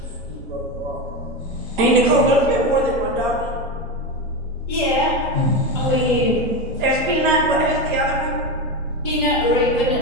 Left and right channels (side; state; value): both; normal; correlation 0.17